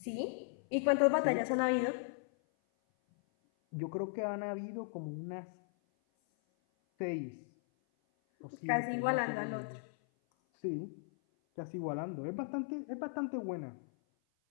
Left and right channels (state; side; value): silent; right; 53 dB below the other